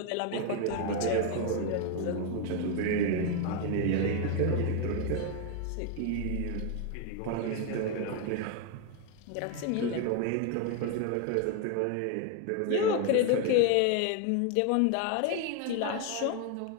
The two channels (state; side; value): different; both; correlation 0.01